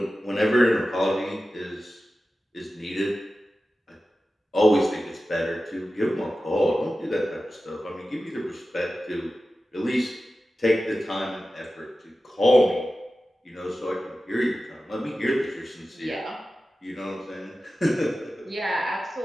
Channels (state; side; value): normal; both; correlation 0.94